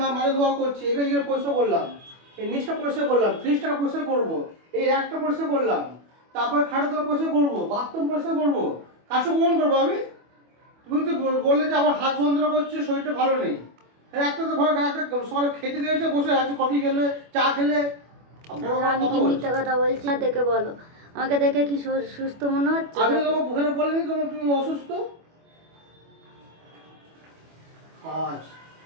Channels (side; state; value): left; late; 25 ms